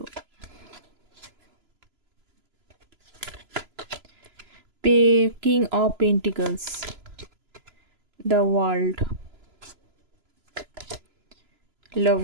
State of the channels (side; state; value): left; late; 3.0 ms